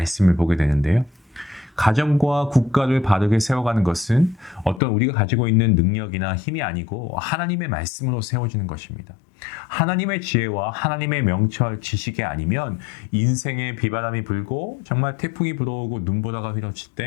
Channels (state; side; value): drops out; right; at 4.8 s